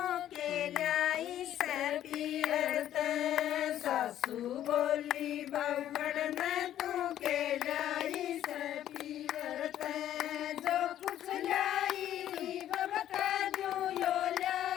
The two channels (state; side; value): quieter; right; 11.7 dB